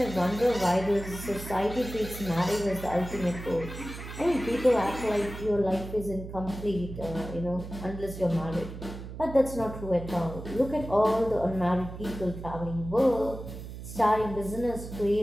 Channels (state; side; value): noise; right; hum, 10 dB below the sound